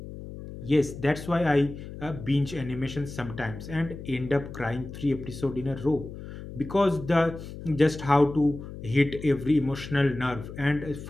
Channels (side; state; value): left; noise; hum, 12 dB below the sound